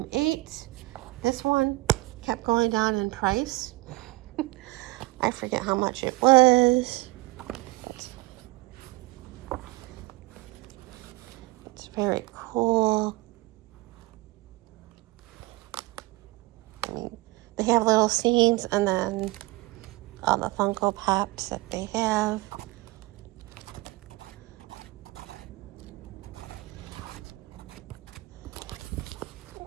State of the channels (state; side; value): quieter; left; 22.4 dB